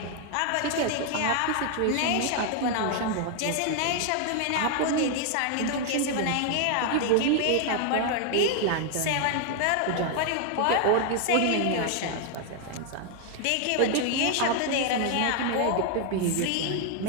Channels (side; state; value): both; different; correlation 0.00